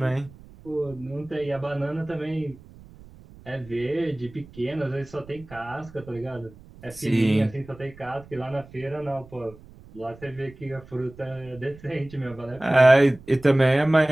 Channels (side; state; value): right; noise; rumble, 21 dB below the sound